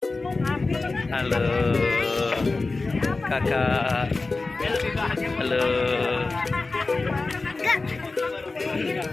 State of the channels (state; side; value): quieter; right; 3.6 dB